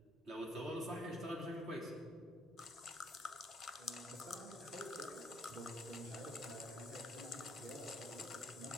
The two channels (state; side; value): normal; both; correlation 0.67